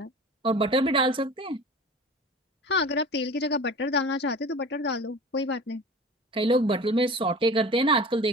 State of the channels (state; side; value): normal; both; correlation 0.38